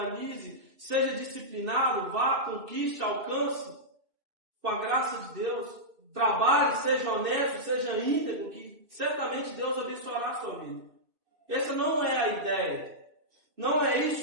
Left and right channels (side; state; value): left; late; 2.6 ms